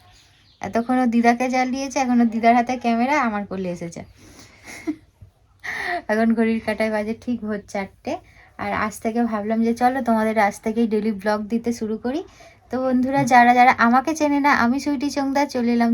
এতক্ষণও দিদাকে জ্বালিয়েছে, এখনো দিদার হাতে ক্যামেরা, আমার কোলে এসেছে। এখন ঘড়ির কাঁটায় বাজে ঠিক ভোর 4টে। আর আজ থেকে ভাবলাম যে চলো তোমাদের আজ থেকেই ডেলি ব্লগ দিতে শুরু করি। তো বন্ধুরা, যারা যারা আমাকে চেনে না, আমি সুইটি চোংদা চলে এলাম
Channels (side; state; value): both; identical; correlation 1.00